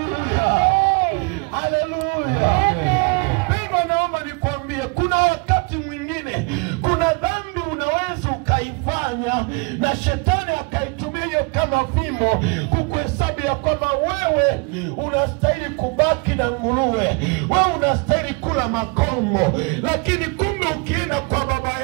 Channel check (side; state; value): left; quieter; 31.3 dB